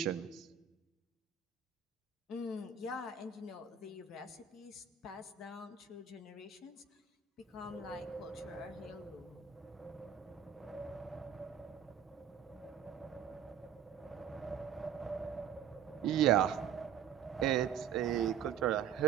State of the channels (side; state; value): left; quieter; 7.9 dB